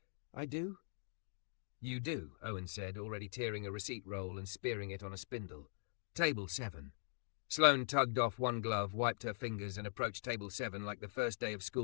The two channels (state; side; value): silent; right; digital silence